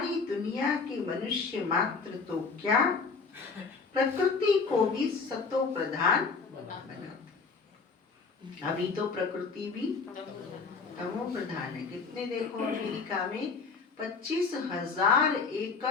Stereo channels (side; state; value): right; quieter; 4.8 dB